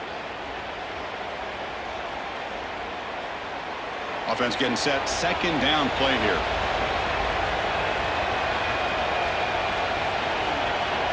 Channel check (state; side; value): identical; both; correlation 1.00